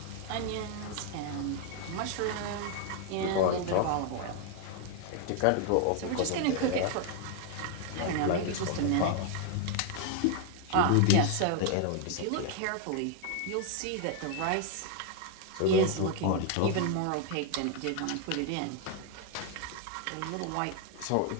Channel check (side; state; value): both; different; correlation 0.00